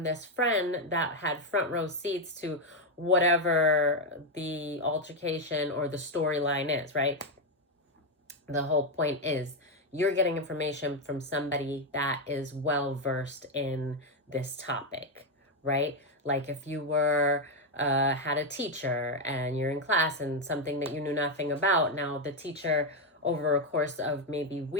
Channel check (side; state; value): both; normal; correlation 0.04